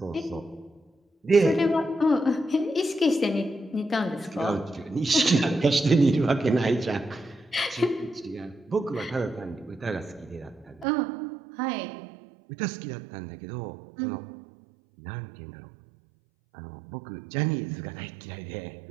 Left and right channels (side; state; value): left; drops out; at 10.9 s